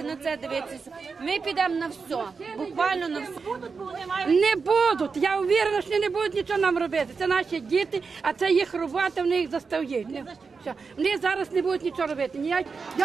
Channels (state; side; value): quieter; left; 5.0 dB